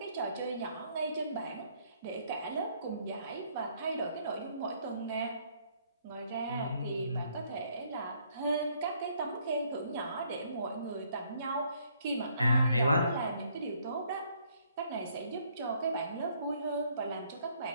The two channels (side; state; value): both; inverted; correlation -0.66